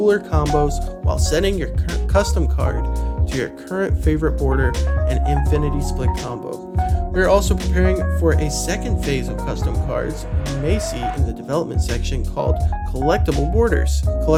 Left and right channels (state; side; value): identical; both; correlation 1.00